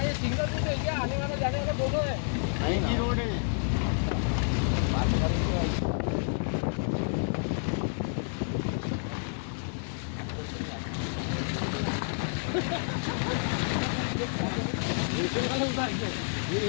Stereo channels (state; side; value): silent; right; digital silence